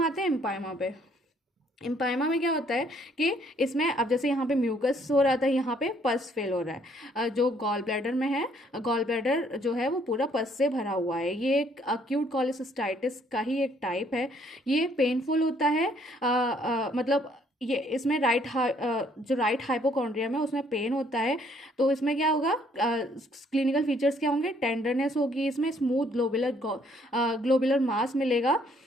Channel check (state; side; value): normal; both; correlation 0.65